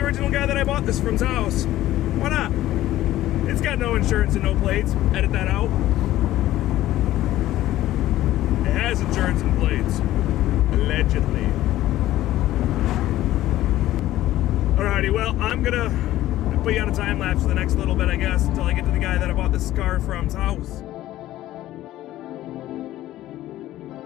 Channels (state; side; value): quieter; right; 14.7 dB